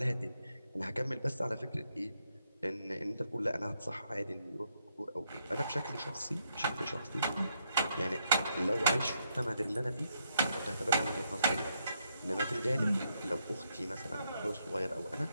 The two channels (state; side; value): inverted; both; correlation -0.77